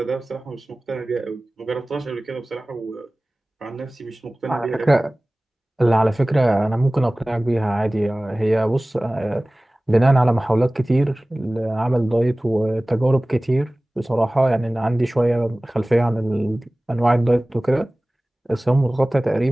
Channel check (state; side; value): normal; both; correlation 0.98